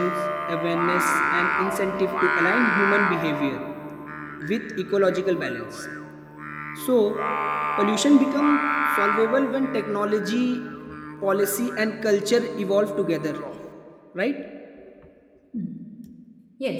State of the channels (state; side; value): identical; both; correlation 1.00